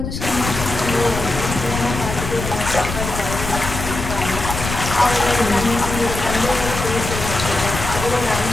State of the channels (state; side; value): noise; left; rumble, 6 dB below the sound